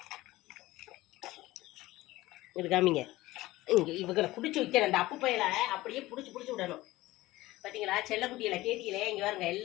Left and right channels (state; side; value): quieter; right; 18.0 dB